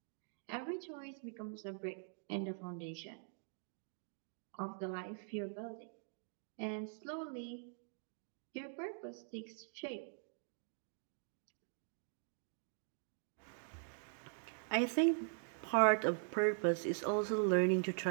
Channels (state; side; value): silent; left; digital silence